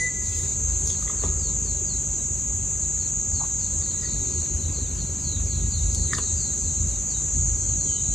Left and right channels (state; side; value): normal; both; correlation 0.89